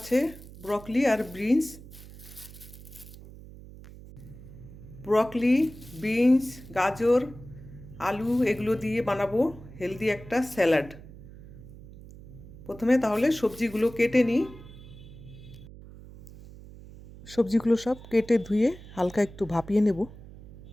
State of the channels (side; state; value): right; noise; hum, 17 dB below the sound